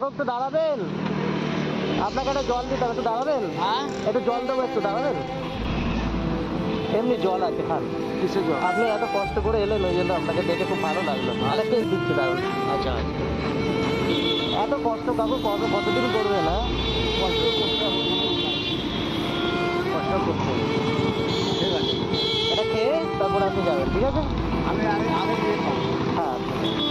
একটু দাঁড়াবেন, আপনাকে একটা জল দিতে হবে, একটু দাঁড়াবেন। হ্যাঁ, একটু জল দেবো, একটু দাঁড়াবেন। এমনি জল আছে, খান। কিসের জল? আপনি এত কষ্ট করে এলেন, ওই জন্য আপনাকে দেখে খুব ভালো লাগলো। আরেকটা দিচ্ছি, দাঁড়ান। আচ্ছা, এত কষ্ট কাকু কতদিন করবে না? কষ্ট করতে হবে, কষ্ট করতে হবে। ঠিক আছে, এটা খেয়ে তারপরে আপনি যাবেন, ঠিক আছে? আমি আগে দিয়ে খাবো। হ্যাঁ,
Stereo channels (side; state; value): both; identical; correlation 1.00